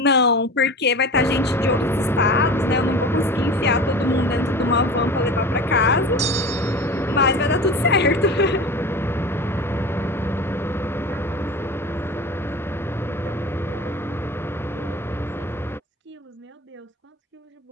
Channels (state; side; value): normal; both; correlation 0.33